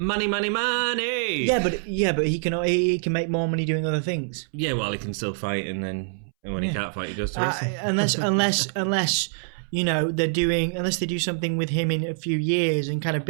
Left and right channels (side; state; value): left; silent; 62 dB below the other